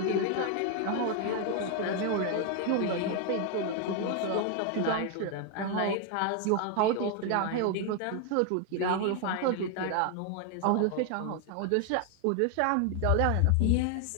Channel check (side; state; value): both; different; correlation 0.00